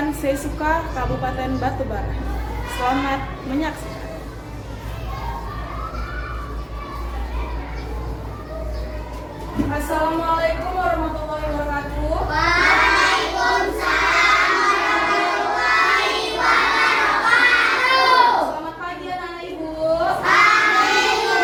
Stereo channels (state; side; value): identical; both; correlation 1.00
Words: Sesuka, Kabupaten Batubara. Selamat menyaksikan. Assalamualaikum warahmatullahi wabarakatuh. Waalaikumsalam. Selamat pagi anak-anak ibu.